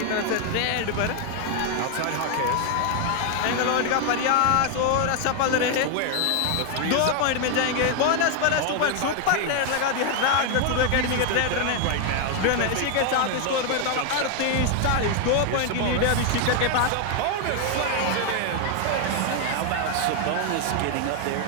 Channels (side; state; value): both; different; correlation 0.01